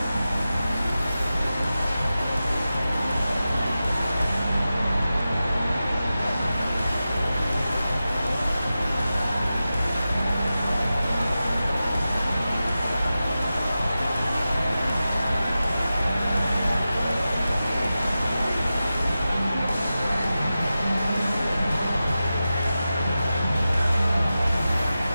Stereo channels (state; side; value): inverted; both; correlation -0.93